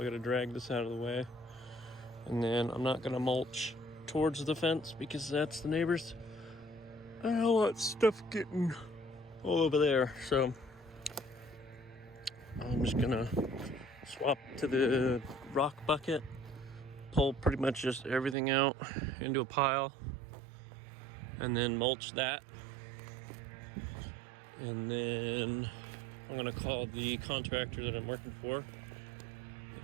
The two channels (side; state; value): left; drops out; at 18.4 s